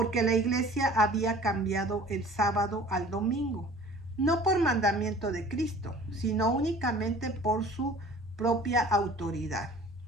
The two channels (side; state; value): both; normal; correlation 0.47